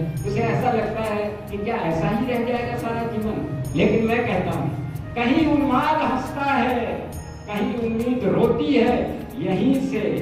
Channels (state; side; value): identical; both; correlation 1.00